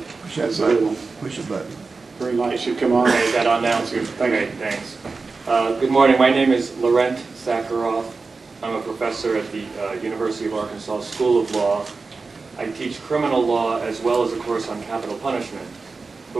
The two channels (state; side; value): quieter; left; 4.2 dB